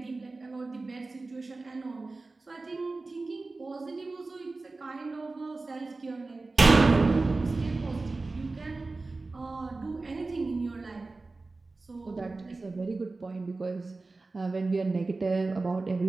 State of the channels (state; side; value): quieter; left; 3.5 dB